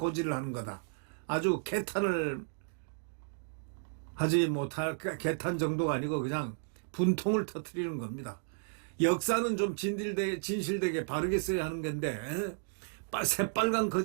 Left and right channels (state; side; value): silent; left; digital silence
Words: 하는 거다. 아주 개탄을 하지 못할 개탄 정도가 아니고 그냥 분통을 터뜨리는 겁니다. 역사는 좀 진실되게 바르게 써야 하는 건데 새빨간